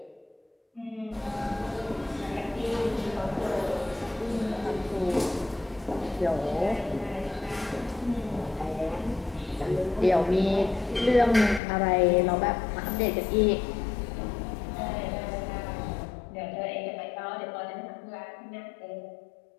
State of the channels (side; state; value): right; drops out; at 11.6 s